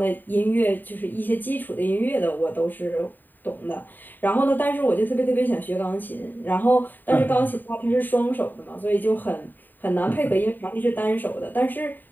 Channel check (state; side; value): late; right; 0.090 ms